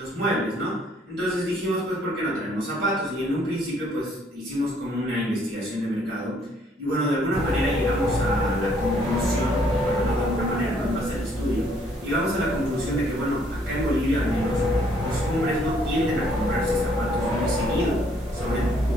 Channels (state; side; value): normal; both; correlation 0.65